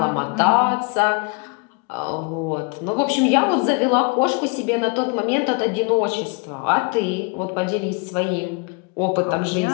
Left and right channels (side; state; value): right; quieter; 32.4 dB